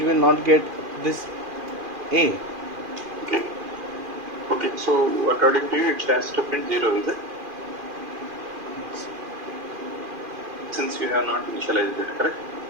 will not get this A. Okay. Okay, so according to you, it has to print 0, is it? Since you have not initialized it, correct?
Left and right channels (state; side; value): late; left; 2.4 ms